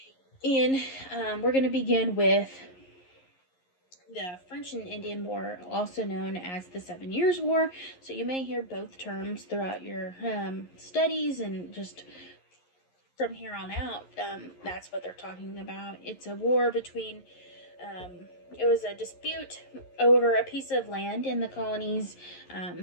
And we're going to begin with the French and Indian War, also known as the 7 Years' War. So you may hear both terms throughout your studies, and just from here on out, that's what they're talking about. It's a war between, it was a dispute over a piece of land in the colonies,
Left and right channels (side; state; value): right; late; 11 ms